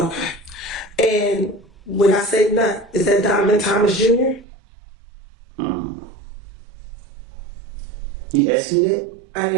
And when I say nut, is that Donovan Thomas Jr.? You asked me that? I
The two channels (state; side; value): drops out; left; at 4.5 s